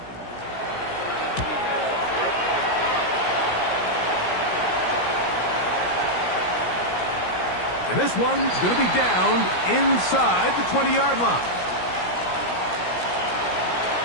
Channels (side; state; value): right; late; 17 ms